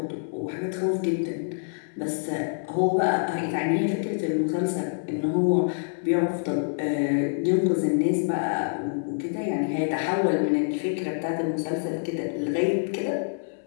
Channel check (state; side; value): silent; right; digital silence